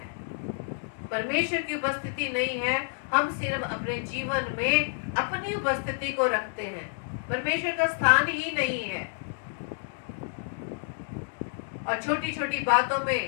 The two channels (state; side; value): silent; right; digital silence